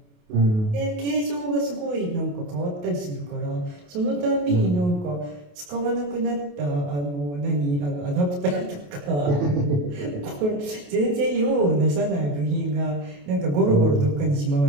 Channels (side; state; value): left; late; 28 ms